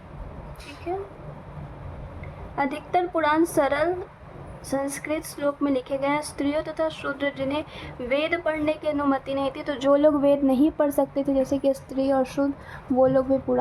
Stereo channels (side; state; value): both; identical; correlation 1.00